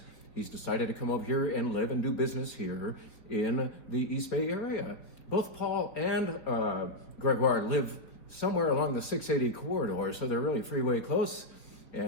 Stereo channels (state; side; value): late; right; 3.9 ms